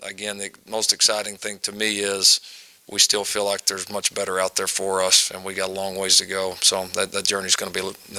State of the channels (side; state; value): both; identical; correlation 1.00